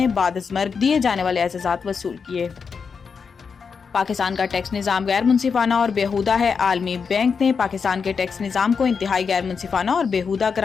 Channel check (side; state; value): right; quieter; 5.7 dB